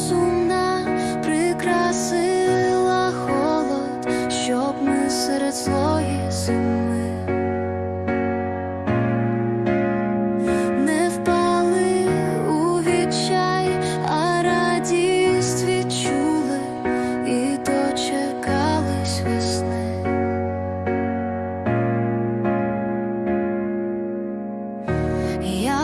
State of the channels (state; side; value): identical; both; correlation 1.00